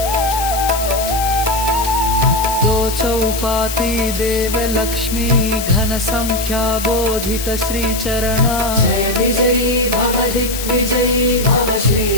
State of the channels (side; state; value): left; noise; hiss, 7 dB below the sound